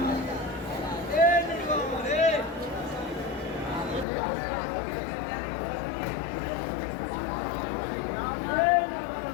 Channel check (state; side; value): drops out; right; at 4.0 s